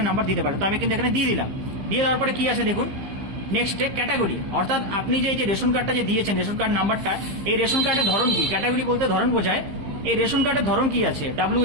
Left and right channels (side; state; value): left; late; 15 ms